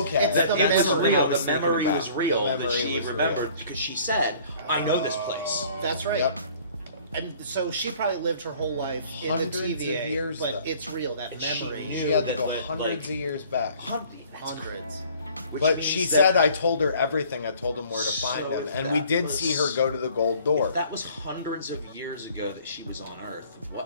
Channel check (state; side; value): inverted; both; correlation -0.53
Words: It's That the it was memory. real. I was The thinking memory about. was real. The That memory she was remembered real. because she said, "I know this place." That's right. Yep. And so she probably lived her whole life in Hundreds the of TVA, years, but though. it's real. That And she memory. knew She had to that, go like, hundreds of years back. Hundreds. Which But means she that- said, I told her everything. I told him where to find So him. if And we that did was- see her go to the gold door. If that was hundreds of years ago that she was on Earth,